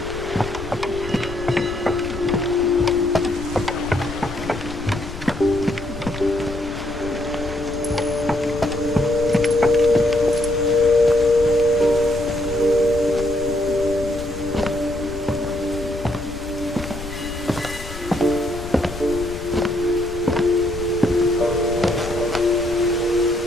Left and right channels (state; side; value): noise; left; rumble, 11 dB below the sound